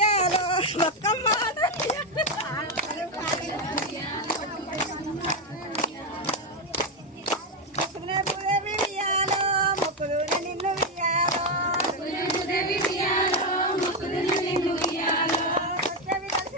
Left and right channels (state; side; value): normal; both; correlation 0.07